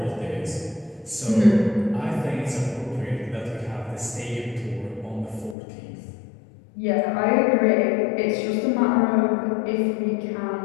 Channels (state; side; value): drops out; right; at 5.6 s